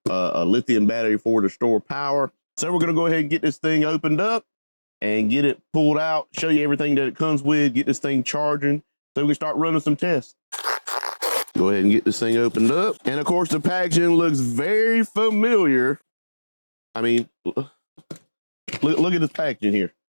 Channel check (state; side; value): inverted; both; correlation -1.00